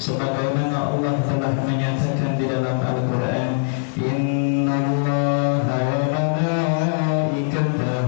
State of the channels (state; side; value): silent; right; digital silence